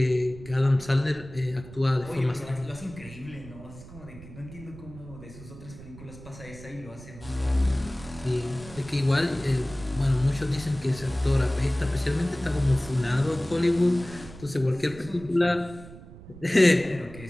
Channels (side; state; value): right; noise; rumble, 17 dB below the sound